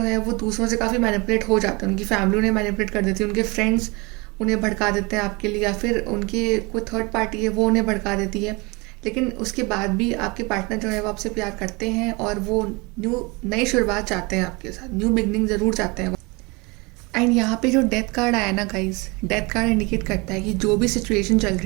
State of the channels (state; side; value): quieter; left; 26.8 dB